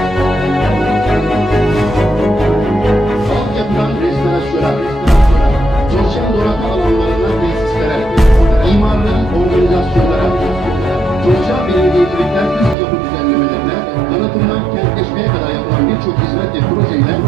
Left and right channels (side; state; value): left; drops out; at 12.8 s